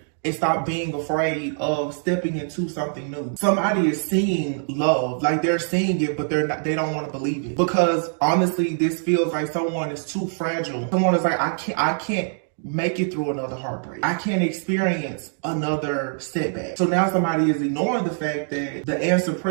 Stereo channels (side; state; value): left; silent; digital silence